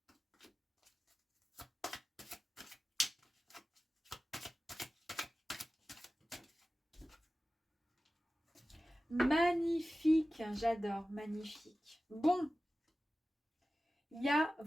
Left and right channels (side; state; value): both; normal; correlation 0.95